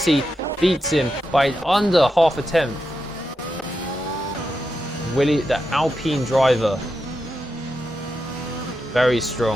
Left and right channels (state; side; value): normal; both; correlation 0.87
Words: beats him by under half a tenth. Willie, the Alpine driver. Very